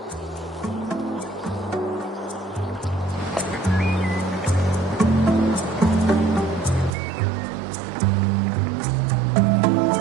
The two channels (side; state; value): left; drops out; at 7.0 s